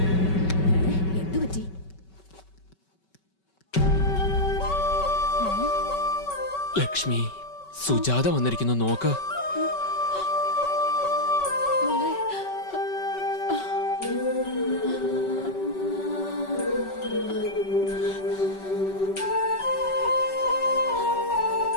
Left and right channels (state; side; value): late; right; 5.3 ms